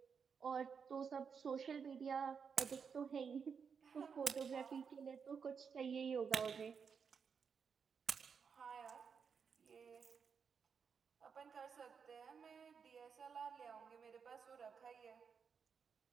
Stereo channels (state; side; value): quieter; left; 6.3 dB